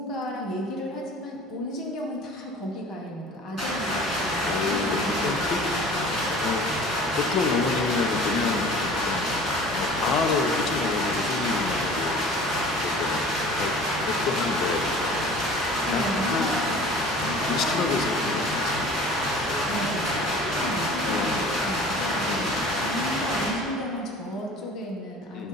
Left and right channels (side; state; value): both; normal; correlation 0.44